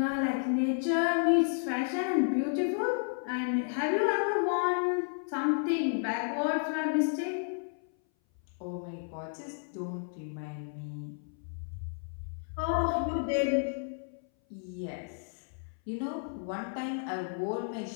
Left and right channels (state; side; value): silent; right; 56 dB below the other